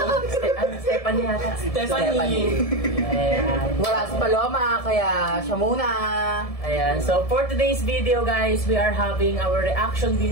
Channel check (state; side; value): late; right; 1.7 ms